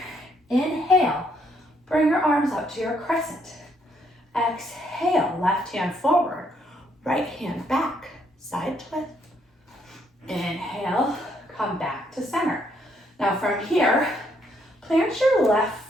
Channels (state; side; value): normal; both; correlation 0.72